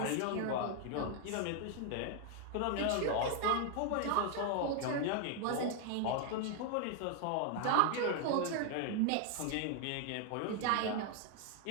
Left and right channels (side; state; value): both; different; correlation 0.00